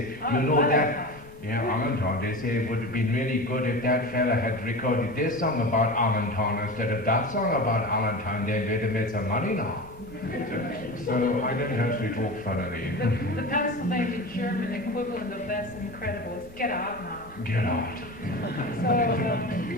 you know that, yeah, Allentown, they say it would have been really good if that fella had recorded this song about Allentown instead of that song about Allentown, then they'd have made some money now. So I don't actually talk funnily. The Pennsylvania German equivalent of that's incredible is get out now. Get out. So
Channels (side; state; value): right; noise; rumble, 23 dB below the sound